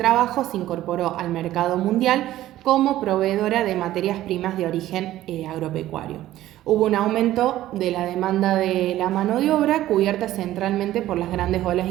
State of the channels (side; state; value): left; quieter; 14.2 dB